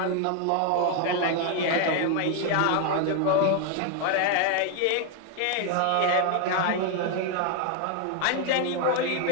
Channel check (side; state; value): both; different; correlation 0.01